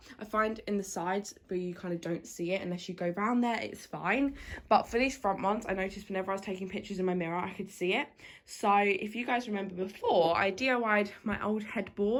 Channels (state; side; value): identical; both; correlation 1.00